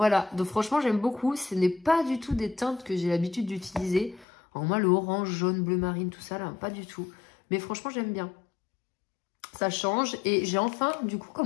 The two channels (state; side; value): drops out; right; at 4.2 s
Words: donc franchement, j'aime beaucoup. Ce n'est pas du tout des teintes que j'ai l'habitude d'utiliser. Alors moi, le orange, jaune, bleu marine, tout ça, là, pas du tout. Mais franchement, j'aime bien. Ça change. Et j'ai enfin, du coup,